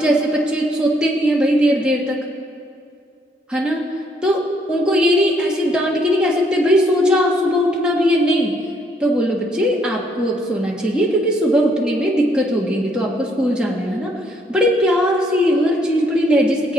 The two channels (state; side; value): normal; both; correlation 0.69